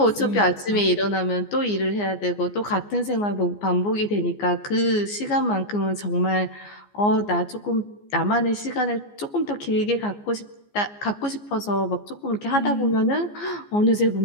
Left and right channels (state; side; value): late; right; 14 ms